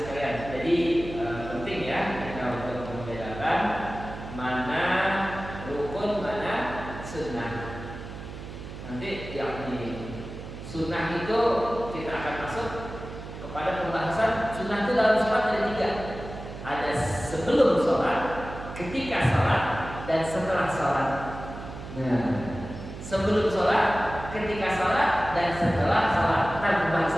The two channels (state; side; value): noise; right; hum, 11 dB below the sound